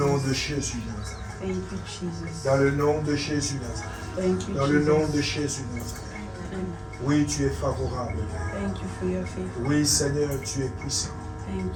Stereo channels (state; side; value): identical; both; correlation 1.00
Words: nom de Jésus Nazareth. Thank you, Jesus. Dans le nom de Jésus Nazareth. Thank you, Dans le nom Jesus. de Jésus Nazareth. Amen. Oui, tu es favorable, Père. Thank you for your faith. Oui, Seigneur, tu es puissant. Thank